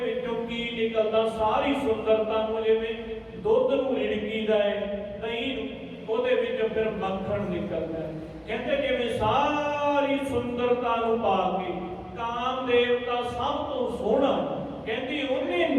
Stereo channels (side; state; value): both; identical; correlation 1.00